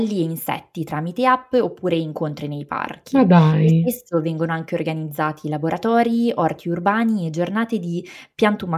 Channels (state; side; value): identical; both; correlation 1.00